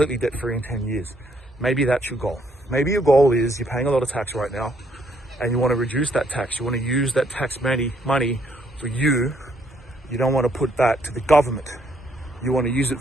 debt free in 10 years? Maybe that's your goal. Maybe your goal is you're paying a lot of tax right now and you want to reduce that tax. You want to use that tax money for you. You don't want to put that to the government. You want to use it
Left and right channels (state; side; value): normal; both; correlation 0.70